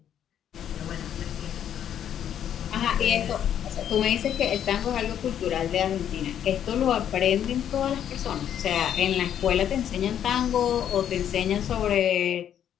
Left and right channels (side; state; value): right; quieter; 9.7 dB